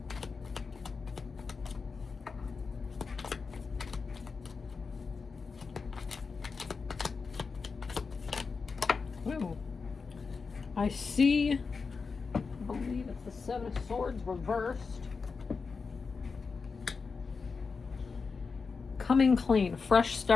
I see, I believe it's the Seven of Swords reversed. Coming clean, fresh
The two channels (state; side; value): quieter; right; 4.9 dB